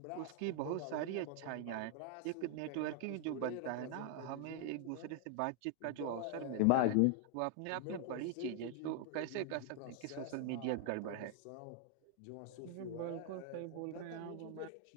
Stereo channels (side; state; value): both; different; correlation 0.00